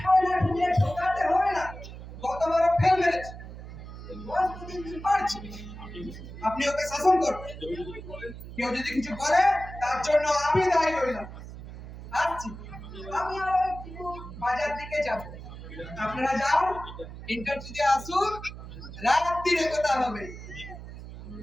না ঢুকে ঢোকাতে হবে না, গতবারও ফেল মেরেছে, বয়স দুদিন পারছে। আপনি ওকে শাসন করবেন, কেউ যদি কিছু করে তার জন্য আমি দায়ী হইলাম। আসছি, আমি আর একটু বাজার দিকে যাব, আপনারা যাও, ইন্টারভিউতে আসুন, রাত্রিরে কথা হবে।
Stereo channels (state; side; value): noise; right; hum, 12 dB below the sound